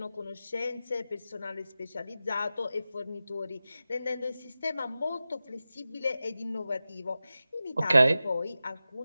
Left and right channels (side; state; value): both; inverted; correlation -0.94